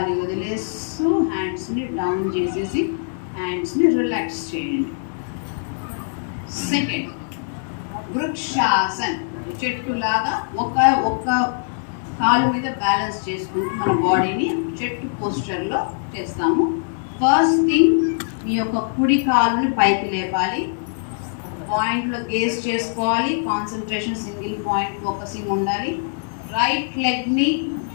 వదిలేస్తూ హ్యాండ్స్ని డౌన్ చేసేసి హ్యాండ్స్ని రిలాక్స్ చేయండి. సెకండ్ వృక్షాసన్. చెట్టులాగా ఒక కాలు మీద బ్యాలెన్స్ చేసుకుంటూ మన బాడీని చెట్టు పోస్చర్లో చేస్తాము. ఫస్ట్ థింగ్, మీ యొక్క కుడి కాలుని పైకి లేపాలి. పాయింట్లో గేస్ చేసుకోవాలి. కాన్సన్ట్రేషన్ సింగిల్ పాయింట్ ఫోకసింగ్ ఉండాలి. రైట్ లెగ్ని,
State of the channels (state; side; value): silent; right; digital silence